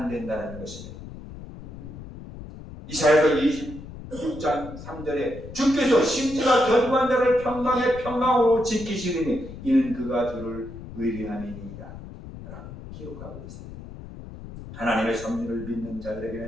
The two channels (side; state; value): left; noise; rumble, 13 dB below the sound